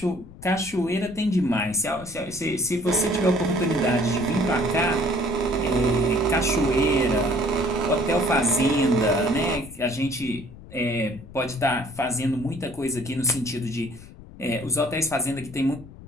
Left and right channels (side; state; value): left; noise; rumble, 18 dB below the sound